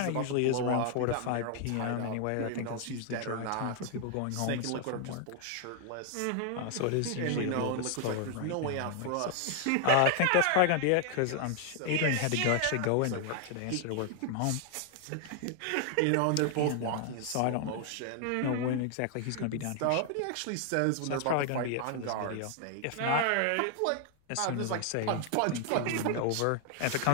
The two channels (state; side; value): different; both; correlation 0.00